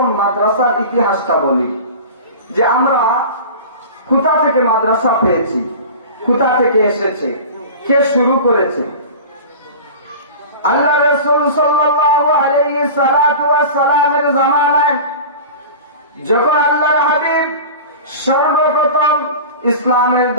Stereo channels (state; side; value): inverted; both; correlation -0.35